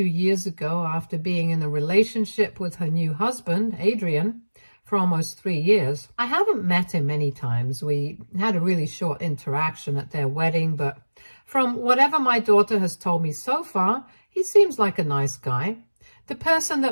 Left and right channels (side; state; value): both; inverted; correlation -1.00